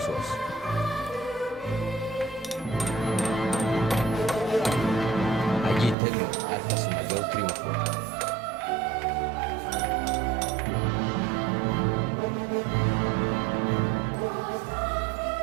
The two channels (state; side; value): drops out; left; at 6.0 s